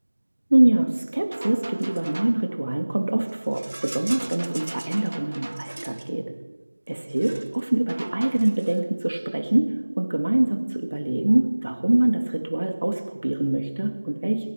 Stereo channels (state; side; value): inverted; both; correlation -1.00